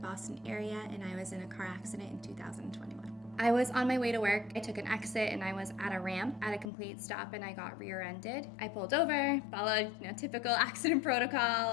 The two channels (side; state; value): right; drops out; at 6.7 s